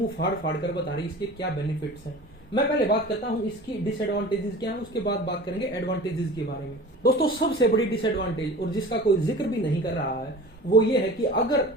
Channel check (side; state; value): both; normal; correlation 0.39